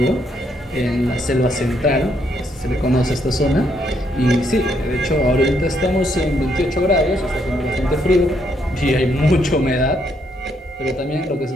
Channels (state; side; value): normal; both; correlation 0.74